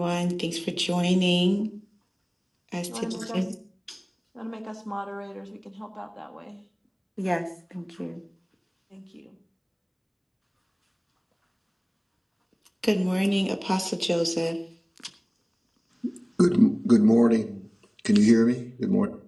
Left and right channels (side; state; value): both; identical; correlation 1.00